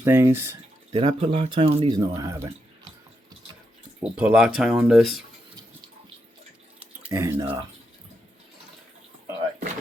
things. Did I put Loctite on these? No, I haven't. We'll put Loctite on this. And, all right.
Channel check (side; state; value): both; normal; correlation 0.83